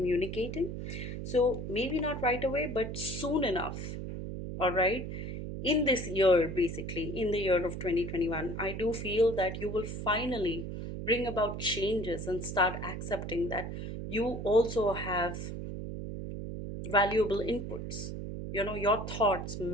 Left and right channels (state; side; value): noise; right; hum, 6 dB below the sound